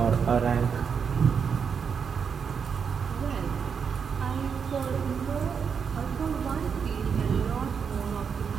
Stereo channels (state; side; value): quieter; left; 6.5 dB